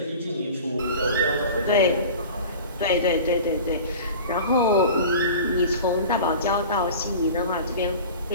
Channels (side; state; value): both; inverted; correlation -0.37